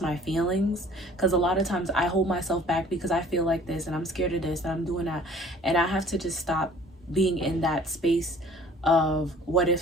my feelings, because a lot of times I hold myself back because I feel like this and I'm scared of this and I'm doing that, and I have to just stop being in that space of what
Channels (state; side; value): normal; both; correlation 0.52